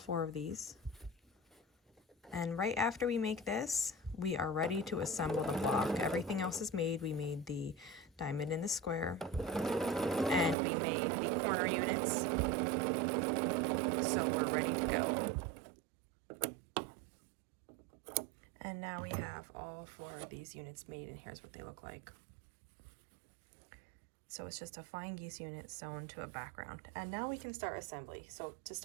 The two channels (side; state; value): left; drops out; at 10.6 s